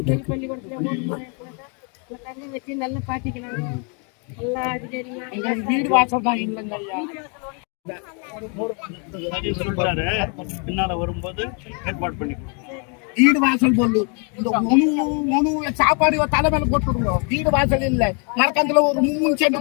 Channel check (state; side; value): quieter; right; 37.5 dB